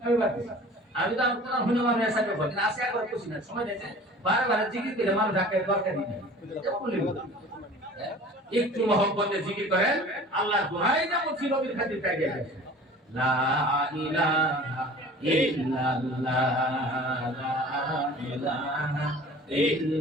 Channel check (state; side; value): normal; both; correlation 0.44